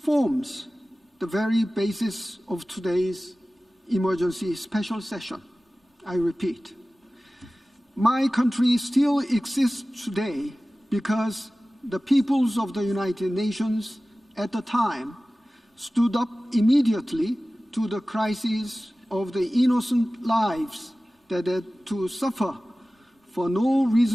the very basis of today's emergency special session. I repeat, my country still exists today because the peoples of the United Nations at the time stood up immediately to the crisis of the innocent lives that had to suffer for no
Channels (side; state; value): both; normal; correlation 0.97